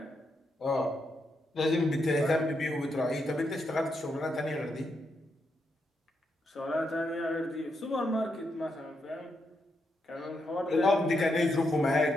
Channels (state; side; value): normal; both; correlation 0.81